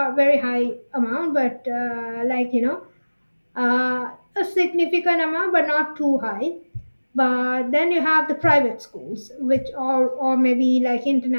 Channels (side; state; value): both; inverted; correlation -1.00